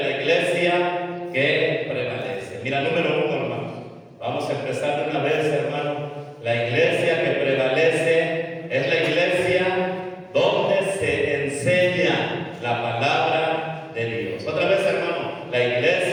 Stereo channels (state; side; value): identical; both; correlation 1.00